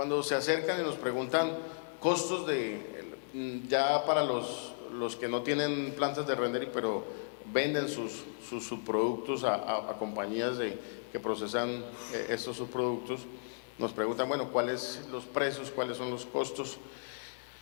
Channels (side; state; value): right; silent; 55 dB below the other